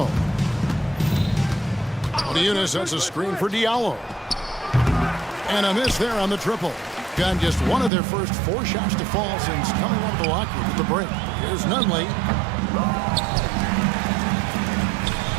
Oniunas sets a screen for Diallo. And a miss there on the triple. Got just one of their first 4 shots to fall since coming out of the locker room at the break. Here's Nunley.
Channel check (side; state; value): left; drops out; at 7.9 s